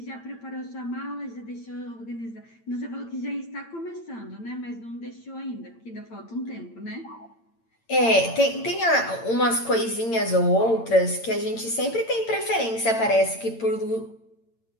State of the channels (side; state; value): right; late; 8.8 ms